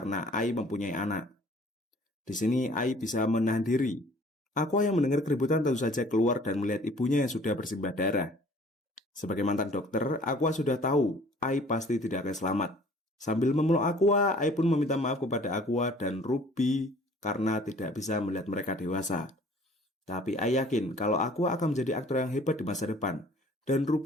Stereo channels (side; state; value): both; normal; correlation 0.53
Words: Ai mempunyai anak. Di sini Ai bisa menahan diri. Aqua yang mendengar keributan tentu saja keluar dan melihat ibunya yang sudah bersimbah darah. Sebagai mantan dokter, Aqua sudah tahu Ai pasti tidak akan selamat. Sambil memeluk Aqua, Ai pun meminta maaf kepada Aqua dan Ruby karena tidak bisa melihat mereka dewasa. Tapi Ai yakin kalau Aqua akan menjadi aktor yang hebat di masa depan, dan